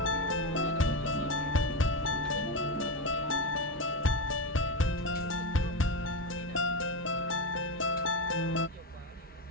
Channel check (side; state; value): both; normal; correlation 0.14